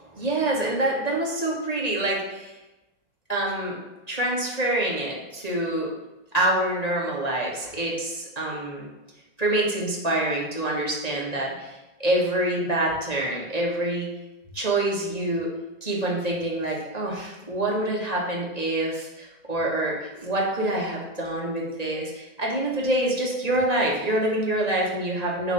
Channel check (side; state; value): right; late; 1.9 ms